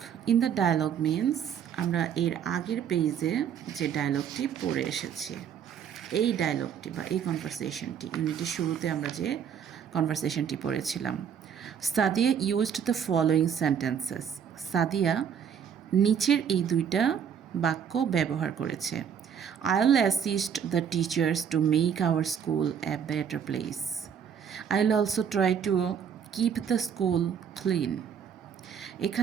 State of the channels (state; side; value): quieter; left; 7.9 dB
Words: ডায়ালগ মিন্স আমরা এর আগের পেজে যে ডায়ালগটি পড়ে এসেছি, এই ডায়লগটি বা এই কনভারসেশনটি ইউনিটের শুরুতে আমরা যে কনভারসেশনটি পড়েছিলাম। Sadia used the following sentences. Sadia নিচের এই দুইটা বাক্য ব্যবহার করেছে। I will assist the teachers to make our school a better place. I will also try to keep the school clean.